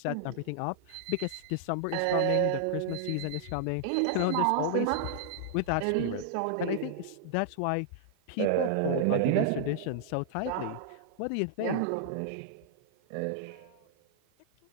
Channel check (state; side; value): different; both; correlation -0.01